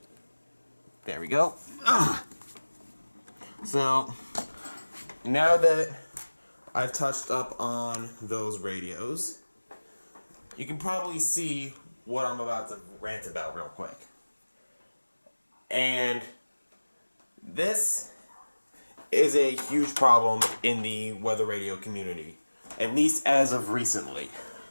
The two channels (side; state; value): both; inverted; correlation -1.00